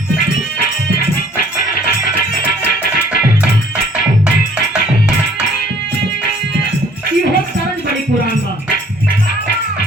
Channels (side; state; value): both; normal; correlation 0.57